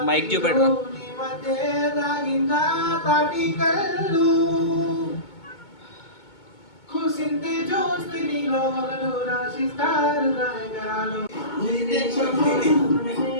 మైక్ చూపెట్టు నీ మధ్య తాగింద తాటి కళ్ళు కుసింతే చూస్తే నీలో మగలు రాసిస్తారు గాయగరాలు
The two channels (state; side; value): late; right; 2.2 ms